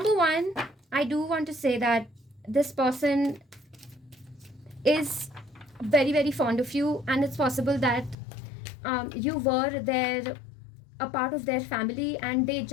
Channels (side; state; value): right; drops out; at 8.2 s